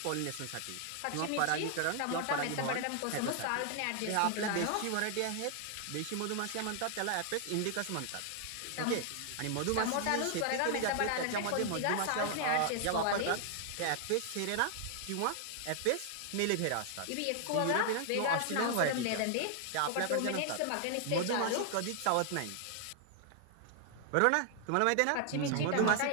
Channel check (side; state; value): both; different; correlation 0.00